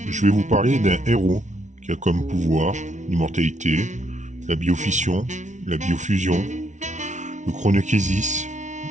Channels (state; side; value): late; left; 0.35 ms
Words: je vais vous parler d'un héros qui a comme pouvoir l'immortalité, la biofission, la biofusion, le chronokésis,